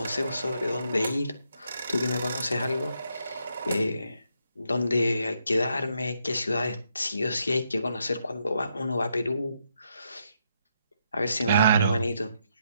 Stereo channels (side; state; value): both; inverted; correlation -0.77